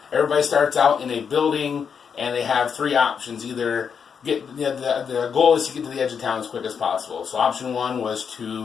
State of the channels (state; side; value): quieter; right; 6.7 dB